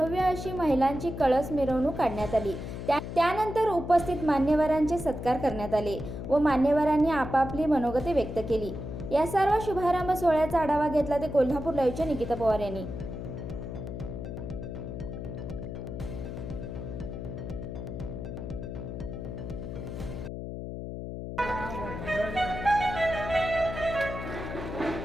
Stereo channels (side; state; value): left; noise; hum, 7 dB below the sound